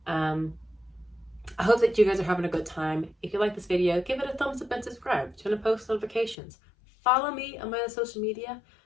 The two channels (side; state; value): right; drops out; at 6.4 s